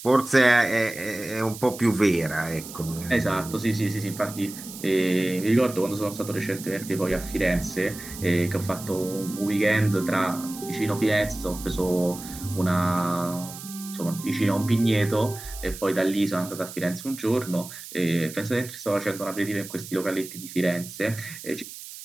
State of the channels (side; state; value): right; noise; hiss, 13 dB below the sound